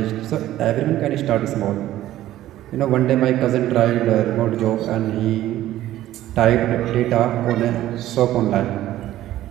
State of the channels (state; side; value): quieter; left; 14.0 dB